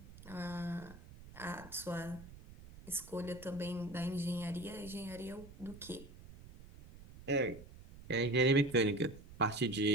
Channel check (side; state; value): right; noise; rumble, 17 dB below the sound